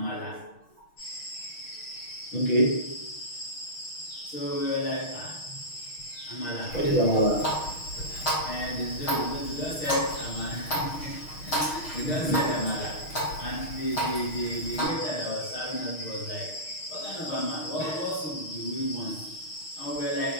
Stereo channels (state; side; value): late; right; 6.4 ms